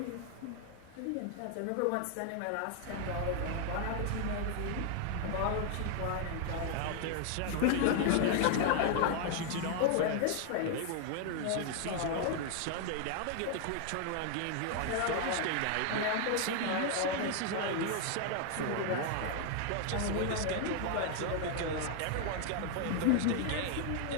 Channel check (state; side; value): different; both; correlation 0.00